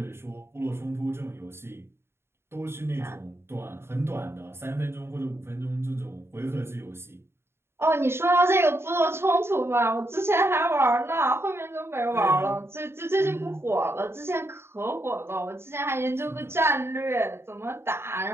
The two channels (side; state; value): left; late; 0.12 ms